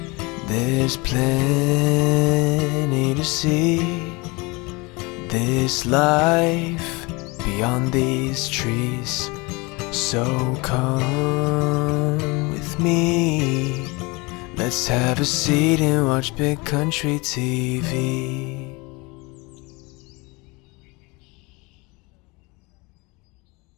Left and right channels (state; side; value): quieter; right; 26.2 dB